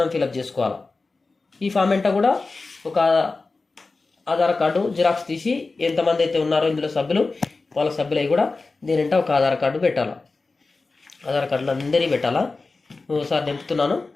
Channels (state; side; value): quieter; right; 3.7 dB